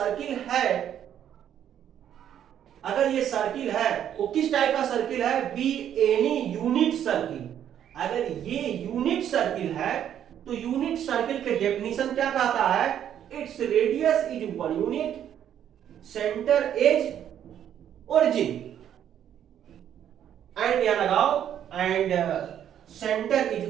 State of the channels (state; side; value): quieter; left; 10.0 dB